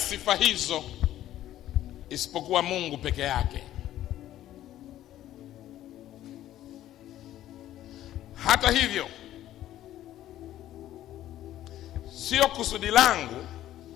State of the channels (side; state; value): right; quieter; 13.1 dB